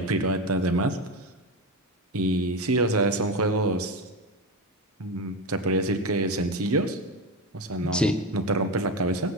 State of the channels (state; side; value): normal; both; correlation 0.18